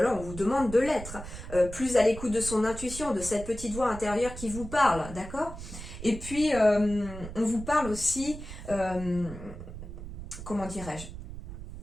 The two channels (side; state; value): right; noise; rumble, 11 dB below the sound